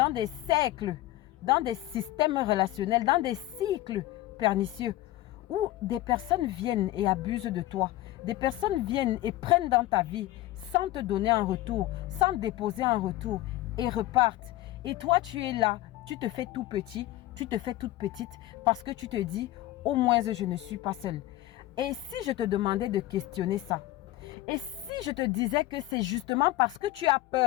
cercles, dans des systèmes relationnels, dans des cycles pernicieux où des personnes viennent et abusent de toi. Des personnes viennent et prennent dans ta vie sans te donner un retour, sans déposer un retour et repartent. Et toi, tu es là, tu te fais tout petit, tu te fais toute petite parce que tu te dis, au moins je ne suis pas seule. Et si je te demandais de questionner ça? Et si je te disais que c'est justement parce que tu as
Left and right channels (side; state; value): right; quieter; 16.1 dB